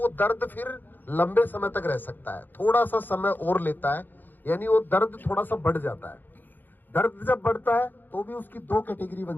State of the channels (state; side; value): late; right; 0.089 ms